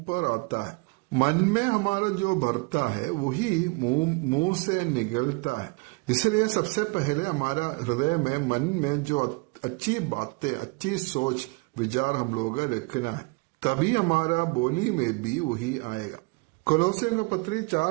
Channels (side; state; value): left; quieter; 28.3 dB